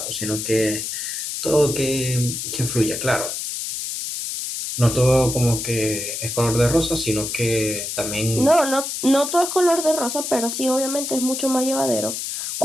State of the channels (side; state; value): left; noise; hiss, 5 dB below the sound